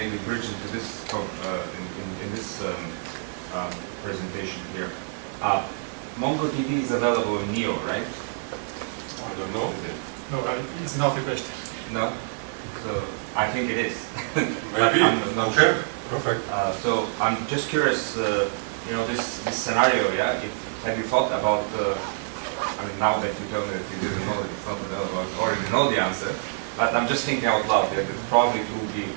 bridge into this in this presentation here. MongoDB is available in Neo, right? I don't know. No, it's not the question. No? So I think it is. Maybe. I'm not Okay. sure. Perfect. So I'm just curious, this scenario, yeah? Have you thought about, I mean, now that you tell me that you didn't know that it's not available, I already know the answer, but I'm just thinking out loud that it probably would be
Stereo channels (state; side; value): silent; left; digital silence